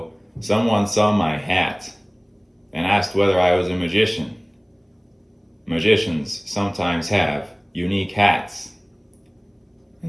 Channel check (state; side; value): identical; both; correlation 1.00